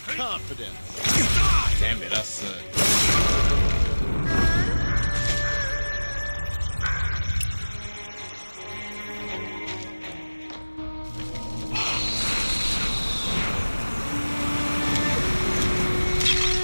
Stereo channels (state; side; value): inverted; both; correlation -1.00